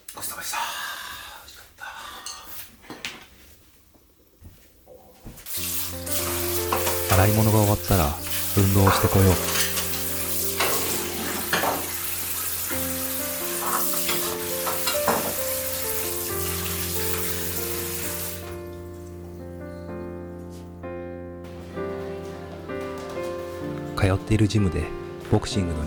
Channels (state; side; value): identical; both; correlation 1.00